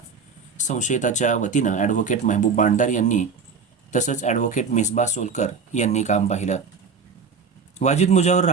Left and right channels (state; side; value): quieter; left; 5.3 dB